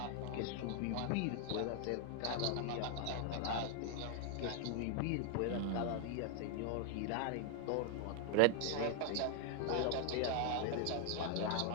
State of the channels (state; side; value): different; both; correlation 0.00